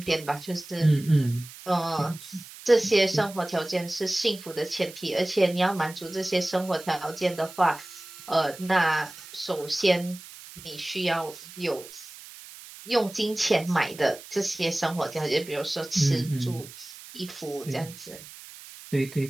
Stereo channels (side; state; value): right; noise; hiss, 16 dB below the sound